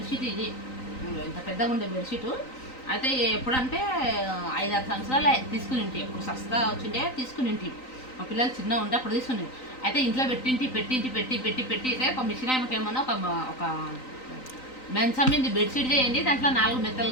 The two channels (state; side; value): late; right; 3.9 ms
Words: ఇది ఇంత పెద్దగా ఉండే బెడ్షీట్ అయితే ఎప్పుడంటే 5-6 సంవత్సరాలు తీసుకుని ఉంటే ఎప్పుడు సస్తా వచ్చిండే తీసుకుని ఉంటే మా పిల్లలు చిన్న ఉంటే అప్పుడు తీసుకుని అయితే ఇంట్లో పెట్టి ఒక మిషన్ ఆమెకేమన్నా ఒక మంచం మీద బెడ్షీట్ చేయండి దాంట్లో 4 మెత్తలు